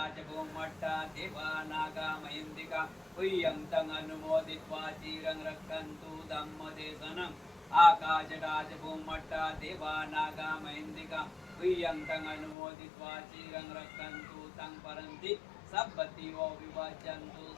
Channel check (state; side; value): drops out; right; at 12.6 s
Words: भूमट्टा दिवानागमहिन्दिका प्रियं अनुमोदित्वा चिरं रक्षन्तु धम्मदेशनम् आकाशटाच भूमट्टा दिवानागमहिन्दिका प्रियं अनुमोदित्वा चिरं रक्षन्तु तं परन्ति सब्बतिवो विभजन्तु